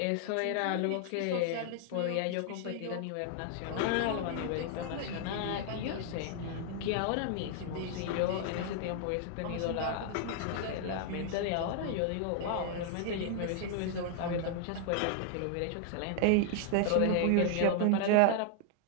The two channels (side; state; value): both; different; correlation 0.00